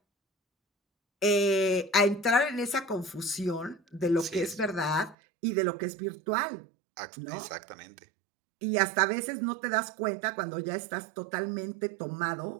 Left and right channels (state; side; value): drops out; left; at 5.2 s